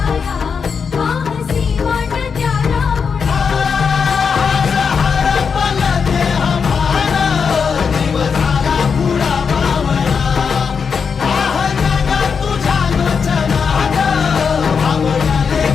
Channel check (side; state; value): right; quieter; 6.0 dB